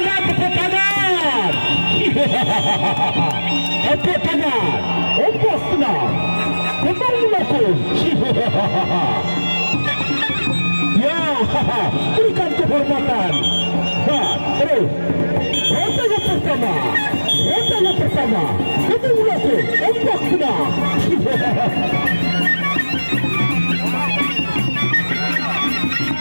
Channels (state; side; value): inverted; both; correlation -1.00